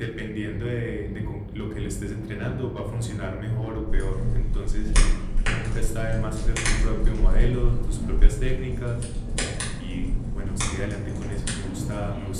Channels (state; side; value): identical; both; correlation 1.00